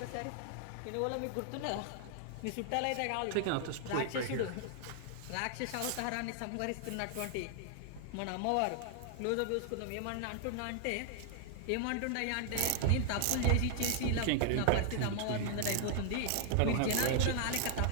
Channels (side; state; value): both; different; correlation 0.00